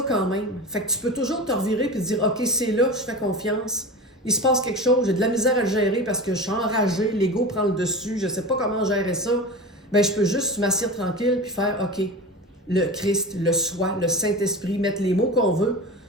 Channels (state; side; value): normal; both; correlation 0.29